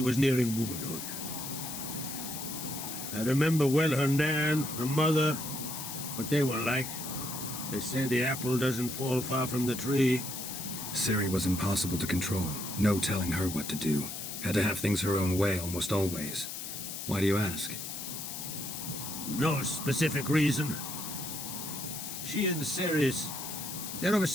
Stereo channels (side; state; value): left; noise; hiss, 7 dB below the sound